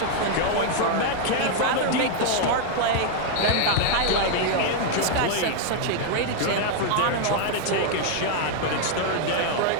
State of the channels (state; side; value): different; both; correlation 0.00